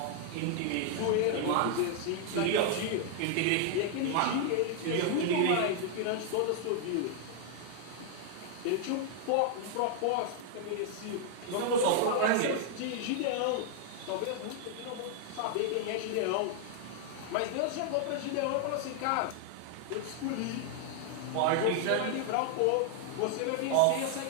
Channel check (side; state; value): both; different; correlation 0.00